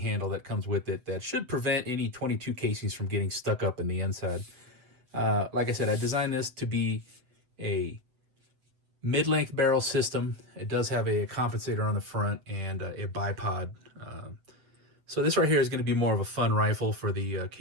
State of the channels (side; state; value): left; late; 7.9 ms